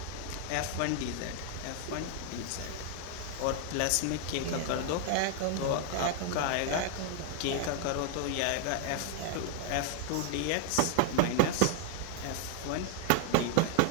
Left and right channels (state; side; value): different; both; correlation 0.00